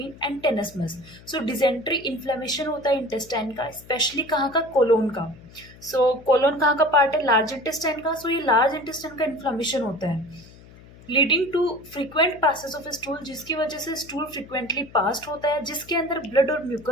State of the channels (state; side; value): noise; left; hum, 22 dB below the sound